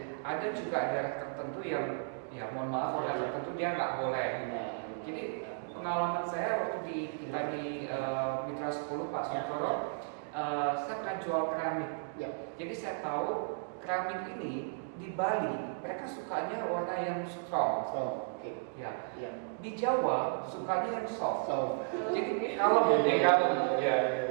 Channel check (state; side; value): silent; left; digital silence